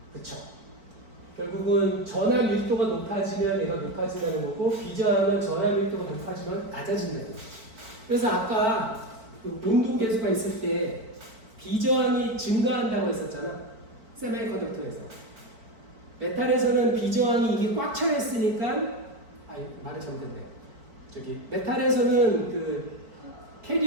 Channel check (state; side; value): late; left; 4.5 ms